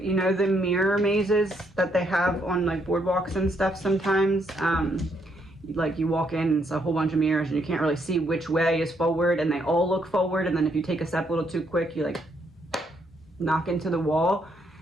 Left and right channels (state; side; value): normal; both; correlation 0.74